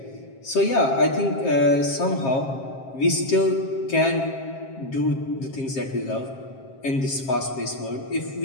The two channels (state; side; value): late; right; 7.5 ms